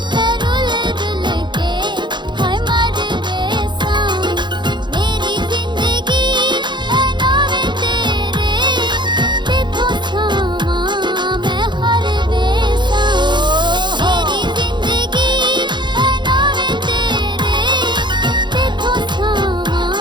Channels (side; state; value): left; late; 0.22 ms